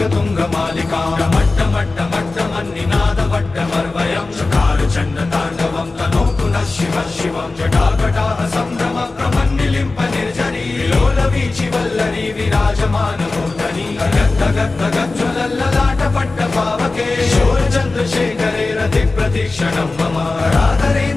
मट्टमट्टमट्टमन्निनादवट्टमर्वयं चकारचण्डताण्डवं तनोतु नः शिवः शिवं जटाकटाः सम्भ्रम प्रमन्निलिम्प निर्जरी लोलवीचि वल्लरी विराजमानमूर्धनि गद्गद्गज्ज्वलल्ललाटपट्टपावके शूरचन्द्रशेखरे रतिप्रतीक्षणं मम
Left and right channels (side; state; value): right; quieter; 3.5 dB